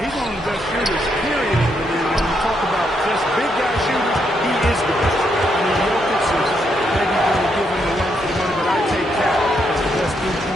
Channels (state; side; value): normal; both; correlation 0.77